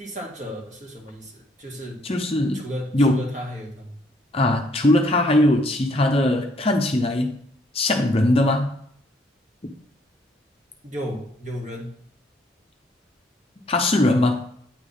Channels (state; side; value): normal; both; correlation 0.67